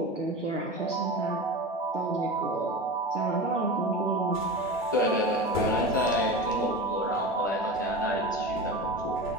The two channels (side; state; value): both; normal; correlation 0.29